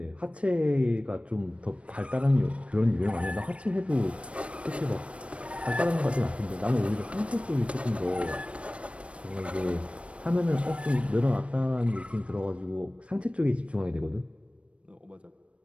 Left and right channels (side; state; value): left; late; 0.061 ms